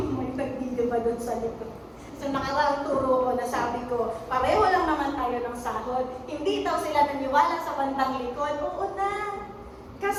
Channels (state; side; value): identical; both; correlation 1.00